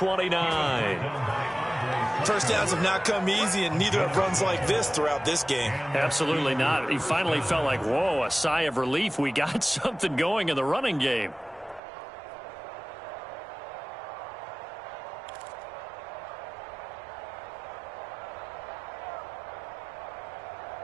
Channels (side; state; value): left; drops out; at 11.8 s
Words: First downs have not come easy, and neither have runs like this throughout this game. Absolutely not. He finally felt like, whoa, a sigh of relief. We got something going in the running game.